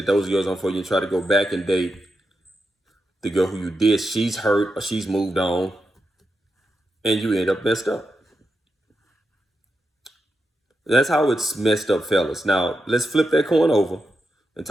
those girls aren't for you and try to go back and date the girl who you did, she's hurt or she's moved on, and you end up messed up. That's how it's messed up, fellas. Now, let's flip that coin over and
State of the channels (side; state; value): both; normal; correlation 0.87